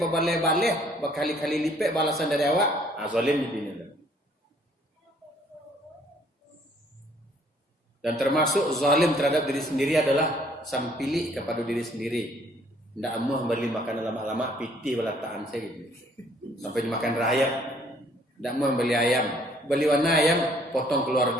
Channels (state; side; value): normal; both; correlation 0.62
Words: berbaleh-baleh, berkali-kali lipet balasan dari awak, zalim di dunia. Dan termasuk zalim terhadap diri sendiri adalah sampili kepada diri sendiri. Tidak amuh beli makanan lama-lama pitih belataan saya gitu. Sampai dimakan rayap. Tidak amuh beli ayam. Beli warna ayam potong